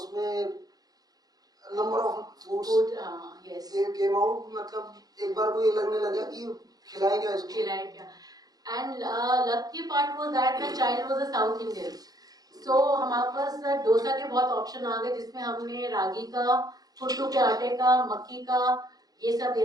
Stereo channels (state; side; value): late; left; 0.19 ms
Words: number of foods came out, मतलब एक बार को ये लगने लगा कि खिलाएंगे इसको, खिलाएंगे। And lucky part was that the child was a South Indian. So हमारे पास डोसा के बहुत ऑप्शन आ गए, जिसमें हमने रागी का, कुट्टू के आटे का, मक्की का, ये सब